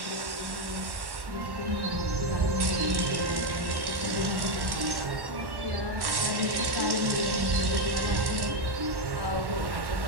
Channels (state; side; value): late; left; 1.1 ms